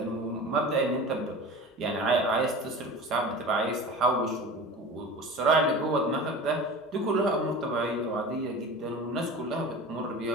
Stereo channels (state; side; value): normal; both; correlation 0.35